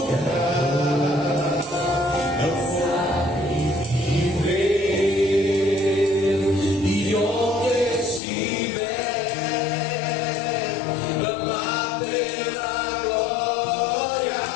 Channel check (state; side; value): drops out; right; at 8.2 s